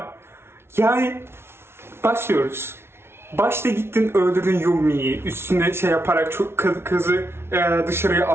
Yani başlıyoruz. Başta gittin öldürdün Yumi'yi, üstüne şey yaparak çok kızı dışarıya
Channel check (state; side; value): late; left; 0.12 ms